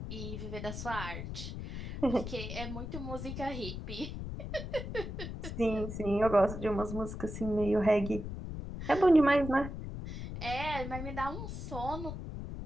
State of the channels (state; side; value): noise; left; rumble, 7 dB below the sound